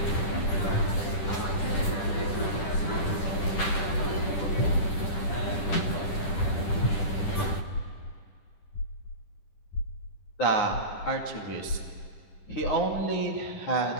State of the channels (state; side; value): late; right; 10 ms